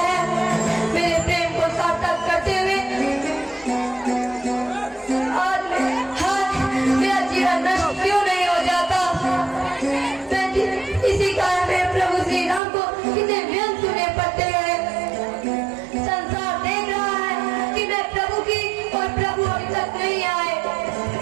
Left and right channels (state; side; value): drops out; left; at 12.6 s